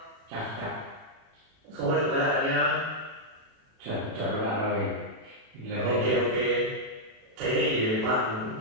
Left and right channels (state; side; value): late; left; 37 ms